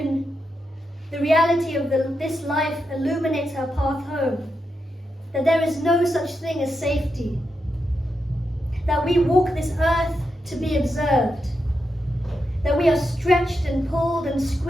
the reality of this life illuminates her path home. That there is no such thing as safety. That we walk this earth to be observed. That we are stretched and pulled and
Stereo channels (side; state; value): both; normal; correlation 0.86